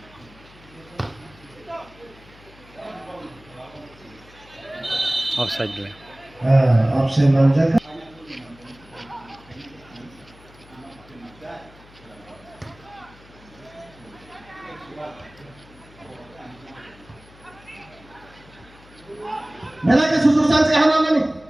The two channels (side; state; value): left; noise; hum, 24 dB below the sound